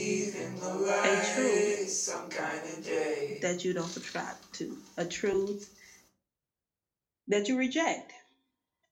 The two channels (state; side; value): identical; both; correlation 1.00